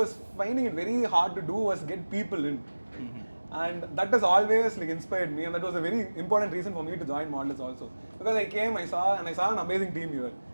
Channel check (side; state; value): both; inverted; correlation -1.00